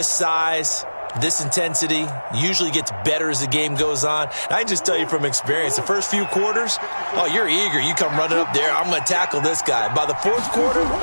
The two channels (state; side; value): inverted; both; correlation -1.00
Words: size, this intensity usually gets better as the game goes on. And I just tell you from experience, the first few quarters, oh, you're eager. You come running up there, I'm going to tackle this guy. By the fourth quarter,